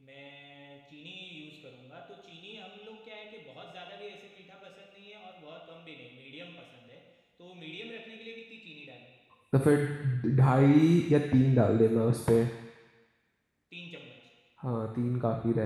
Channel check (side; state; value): both; identical; correlation 1.00